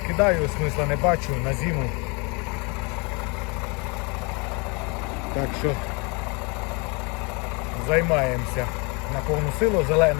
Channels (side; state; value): right; quieter; 31.1 dB